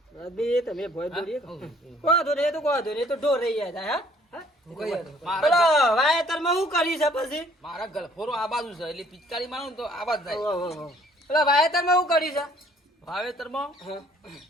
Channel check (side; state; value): both; normal; correlation 0.60